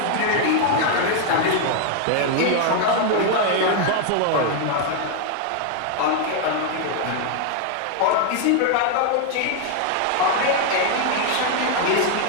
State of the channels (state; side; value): different; both; correlation 0.00